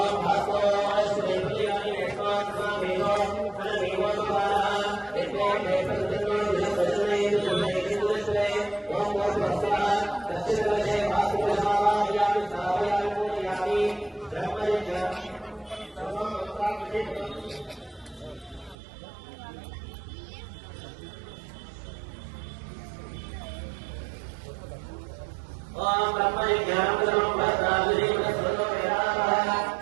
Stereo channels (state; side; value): drops out; left; at 18.8 s